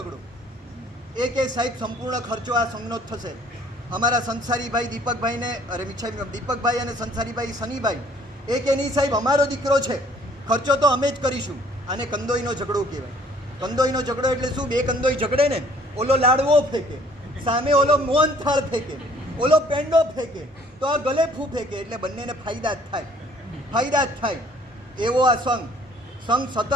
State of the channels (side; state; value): both; normal; correlation 0.58